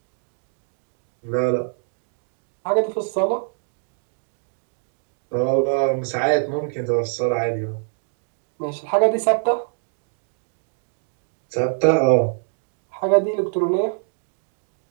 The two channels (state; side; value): silent; left; digital silence